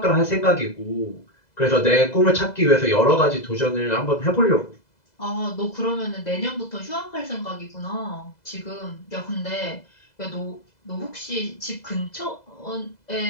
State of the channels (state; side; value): late; right; 2.0 ms